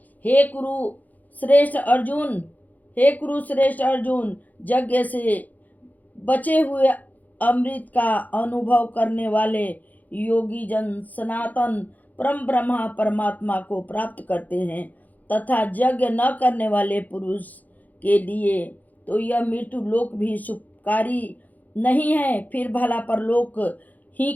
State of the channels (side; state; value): right; late; 0.081 ms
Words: हे कुरु श्रेष्ठ अर्जुन, यज्ञ से बचे हुए अमृत का अनुभव करने वाले योगी जन सनातन परम ब्रह्मा परमात्मा को प्राप्त करते हैं तथा यज्ञ न करने वाले पुरुष के लिए तो यह मृत्यु लोक भी सुखकारी नहीं है। फिर भला परलोक ही